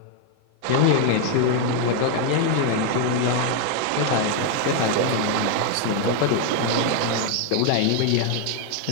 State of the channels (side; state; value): both; different; correlation 0.00